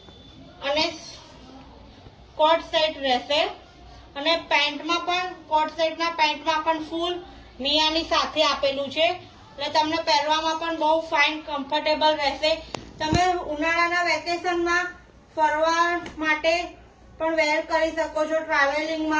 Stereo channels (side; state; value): both; identical; correlation 1.00